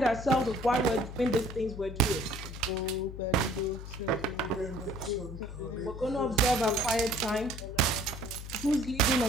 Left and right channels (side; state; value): left; noise; hum, 10 dB below the sound